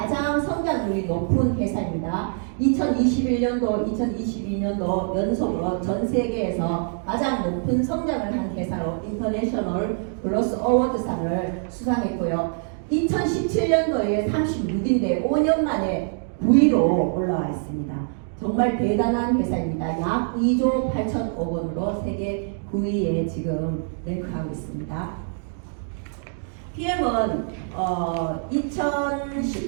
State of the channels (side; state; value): left; silent; 62 dB below the other